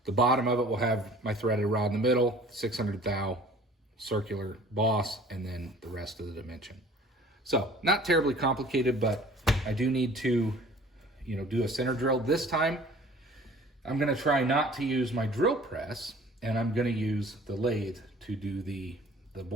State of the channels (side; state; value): both; normal; correlation 0.49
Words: the bottom of it will have my threaded rod in the middle, 600 thou circular boss, and then the rest of the dimension. So not terribly complicated, but I do need to, do a center drill. This time, I'm going to try not to use my drill press, and I'm going to use the lathe to do the